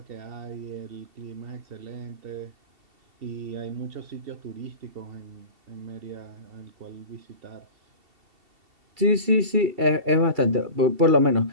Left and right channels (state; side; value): late; left; 2.3 ms